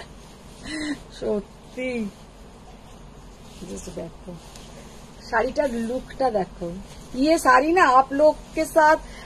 সত্যি जस्ट देखो শাড়িটার লুকটা দেখো। ये साड़ी ना आप लोग के साथ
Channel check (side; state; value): both; identical; correlation 1.00